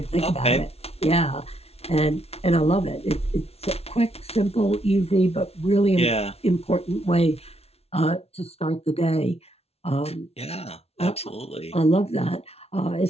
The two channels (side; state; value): right; late; 0.30 ms